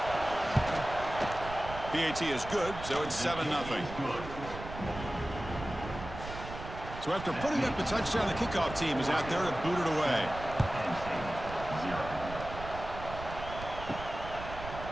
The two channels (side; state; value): right; noise; rumble, 10 dB below the sound